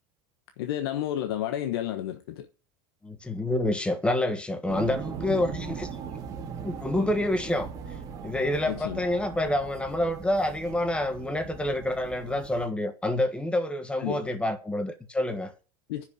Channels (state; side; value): normal; both; correlation 0.69